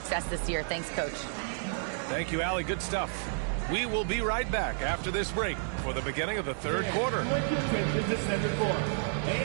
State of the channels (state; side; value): silent; left; 56 dB below the other